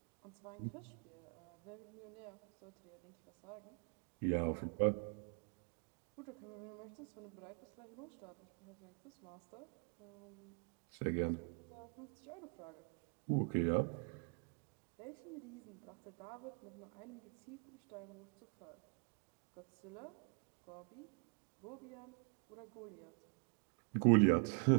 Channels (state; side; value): quieter; left; 38.1 dB